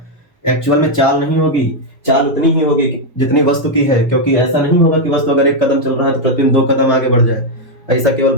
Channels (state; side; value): normal; both; correlation 0.01